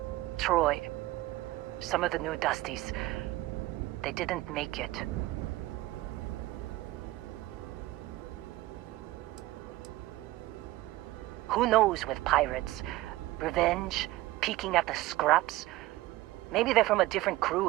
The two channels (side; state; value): left; quieter; 17.8 dB